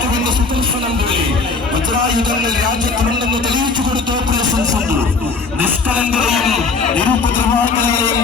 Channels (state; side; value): quieter; right; 4.3 dB